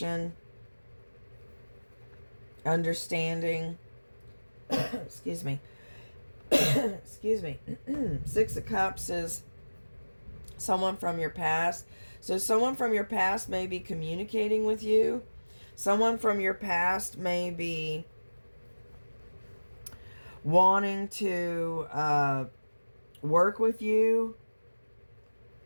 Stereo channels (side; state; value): both; inverted; correlation -1.00